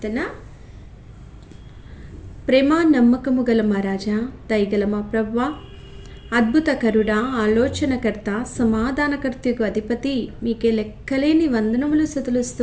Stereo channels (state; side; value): identical; both; correlation 1.00